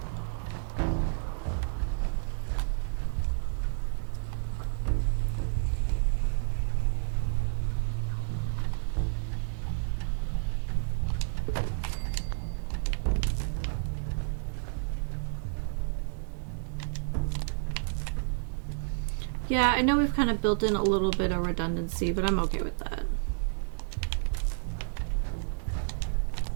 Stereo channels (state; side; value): silent; left; digital silence